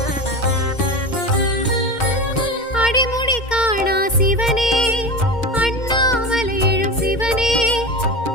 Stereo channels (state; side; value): late; right; 2.1 ms